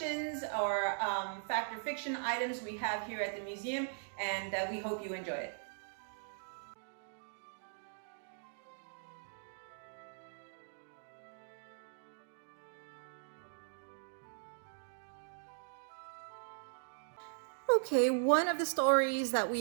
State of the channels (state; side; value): silent; left; digital silence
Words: or fact or fiction items we have here at the museum, and we hope you enjoy it. Okay, one of the stories that we